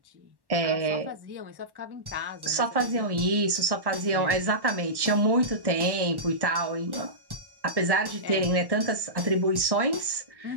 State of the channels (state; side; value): late; left; 1.1 ms